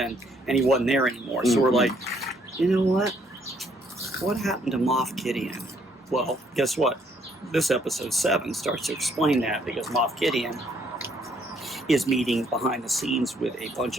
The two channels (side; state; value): both; normal; correlation 0.68